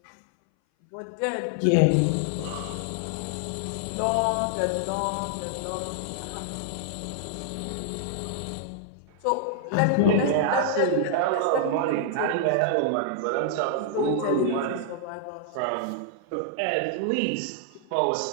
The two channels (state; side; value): different; both; correlation -0.01